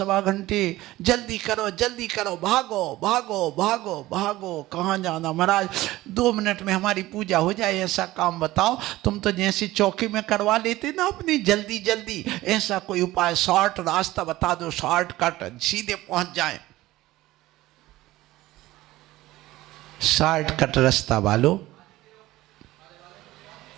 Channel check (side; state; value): left; quieter; 17.1 dB